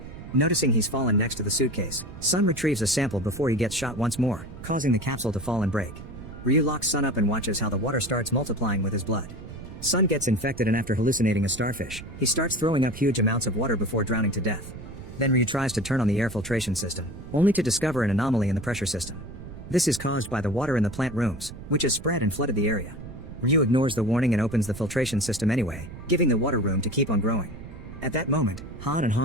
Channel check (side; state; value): right; noise; rumble, 13 dB below the sound